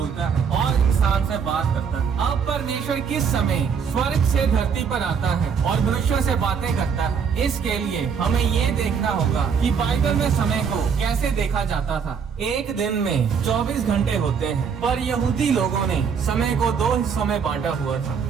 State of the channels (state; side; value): quieter; left; 6.6 dB